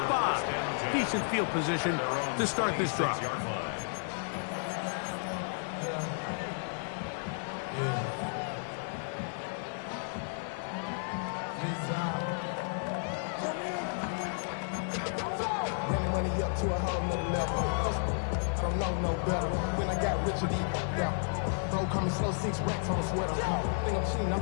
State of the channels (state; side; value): silent; right; digital silence